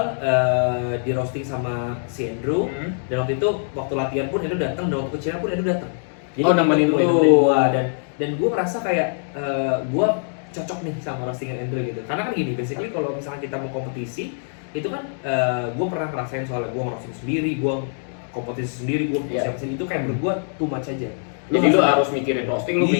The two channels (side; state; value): right; silent; digital silence